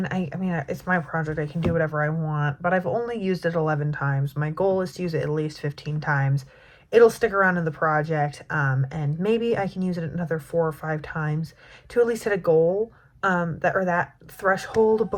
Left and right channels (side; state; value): both; identical; correlation 1.00